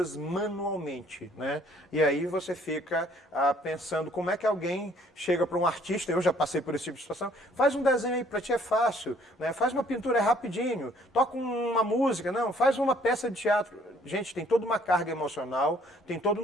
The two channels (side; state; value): both; normal; correlation 0.61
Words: manualmente. Né? E aí você fica pensando como é que alguém chega para um artista, eu já passei por esse tipo de situação, faz um desenho aí, para ti é fácil, né? Faz uma pintura rapidinho, toca uma música, não, faz uma peça de teatro. Gente, tem toda uma carga emocional, tem todo